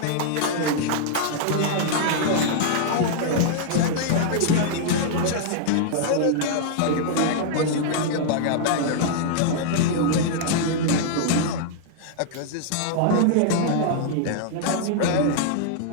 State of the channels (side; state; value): both; different; correlation -0.01